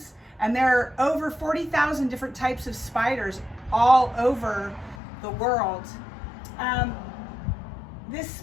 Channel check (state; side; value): drops out; right; at 5.0 s